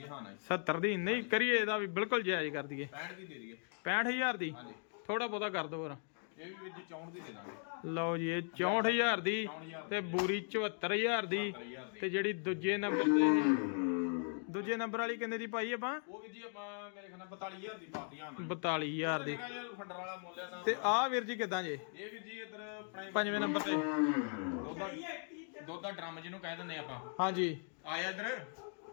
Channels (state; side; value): silent; right; 52 dB below the other